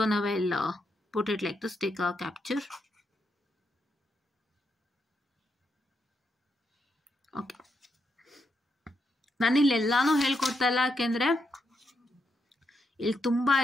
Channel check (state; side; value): normal; both; correlation 0.81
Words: ನಾವ್ I'll put it like this, take a capture. Okay, ನಾನಿಲ್ಲಿ ಎಲ್ಲಾನು ಹೇಳ್ಕೊಡ್ತಾ ಇಲ್ಲ, ಯಾಕೆಂದರೆ ಇಲ್ಲಿ ತುಂಬ